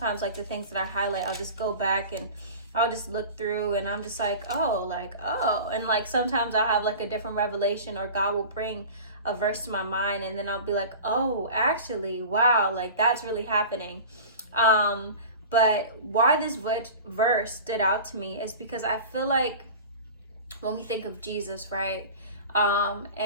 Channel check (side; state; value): both; inverted; correlation -0.36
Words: like, the things that I highlight, I'll just go back and I'll just look through and I'm just like, oh, and like sometimes I'll have like a different revelation, or God will bring a verse to my mind and then I'll be like, oh, actually, wow, like that's really happening. But why this verse stood out to me is because I feel like when we think of Jesus, right?